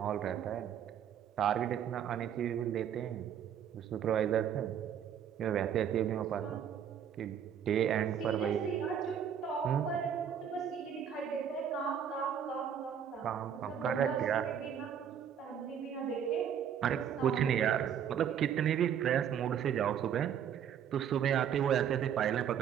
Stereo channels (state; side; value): quieter; left; 8.7 dB